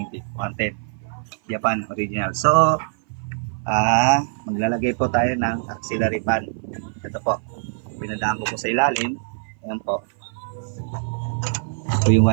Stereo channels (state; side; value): silent; left; 56 dB below the other